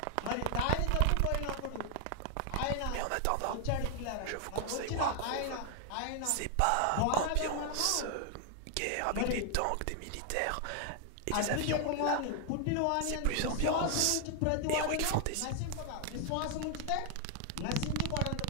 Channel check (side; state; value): both; different; correlation 0.00